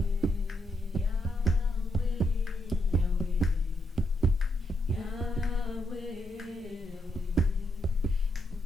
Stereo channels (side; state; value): both; normal; correlation 0.80